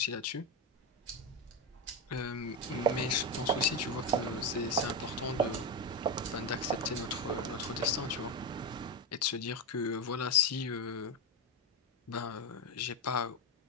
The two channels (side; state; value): both; normal; correlation 0.11